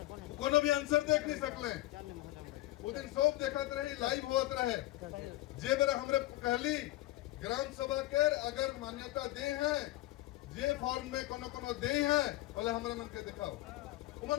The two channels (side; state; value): right; quieter; 17.3 dB